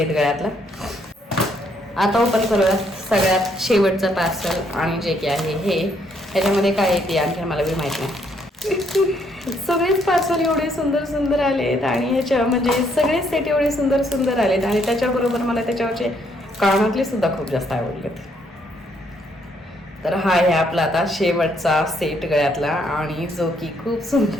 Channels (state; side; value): normal; both; correlation 0.70